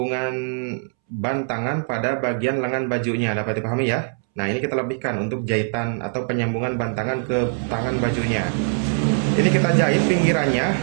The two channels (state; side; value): silent; left; 64 dB below the other